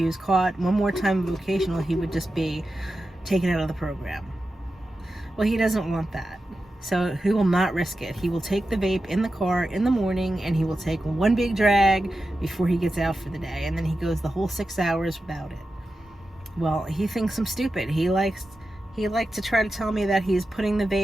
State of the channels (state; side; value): normal; both; correlation 0.91